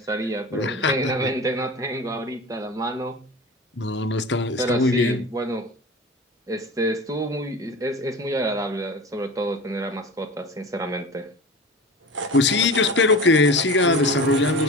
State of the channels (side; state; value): both; normal; correlation 0.33